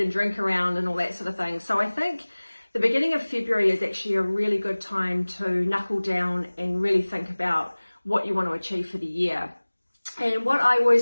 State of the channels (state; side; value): inverted; both; correlation -1.00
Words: and drink around and all that sort of thing. So I think the beginning of February is actually a really good time to knuckle down and really think about what you want to achieve for the year. And what I